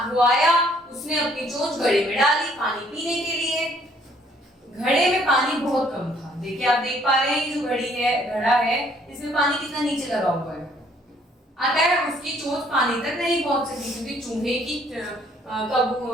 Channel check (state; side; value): normal; both; correlation 0.63